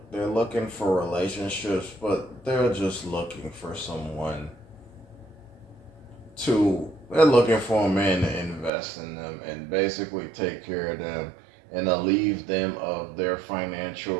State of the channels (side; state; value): left; drops out; at 8.7 s